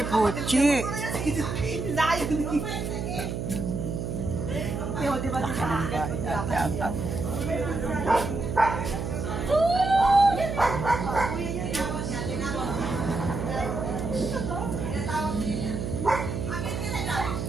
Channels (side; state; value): right; noise; hum, 3 dB below the sound